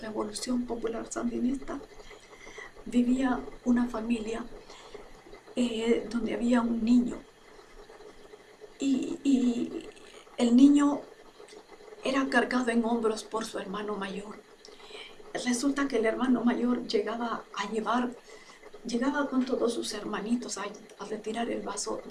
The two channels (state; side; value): identical; both; correlation 1.00